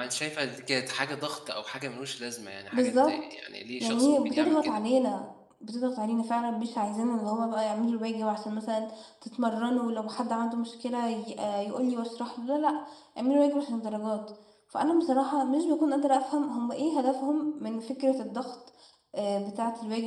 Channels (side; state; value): both; identical; correlation 1.00